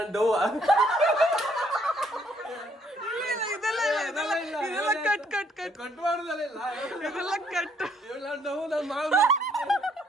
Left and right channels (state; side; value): normal; both; correlation 0.67